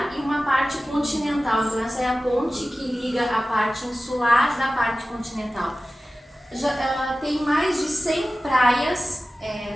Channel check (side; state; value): both; normal; correlation 0.96